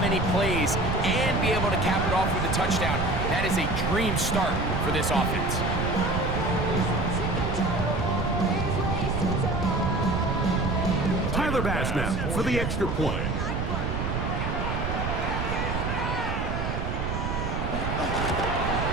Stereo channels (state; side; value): noise; right; rumble, 2 dB below the sound